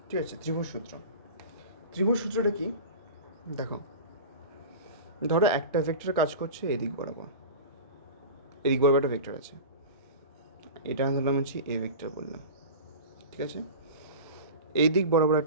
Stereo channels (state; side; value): inverted; both; correlation -0.32